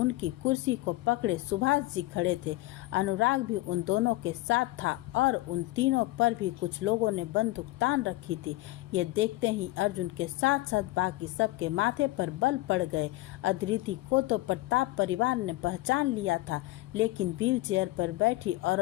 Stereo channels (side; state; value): right; quieter; 18.7 dB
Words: कुर्सी को पकड़े सुभाष जी खड़े थे। अनुराग भी उन दोनों के साथ था और उन तीनों पर भी कुछ लोगों ने बंदूक तान रखी थी। ये देखते ही अर्जुन के साथ साथ बाकी सबके माथे पर बल पड़ गए। अदिति को तो प्रताप परिवार ने पहचान लिया था, लेकिन व्हील चेयर पर बैठी